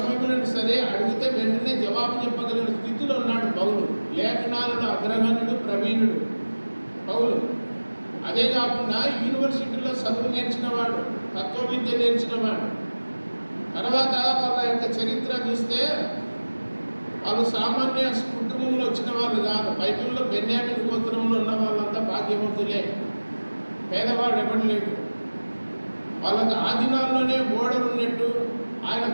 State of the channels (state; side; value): inverted; both; correlation -1.00